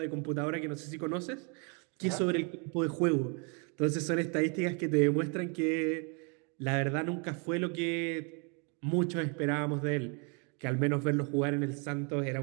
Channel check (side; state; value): left; quieter; 34.6 dB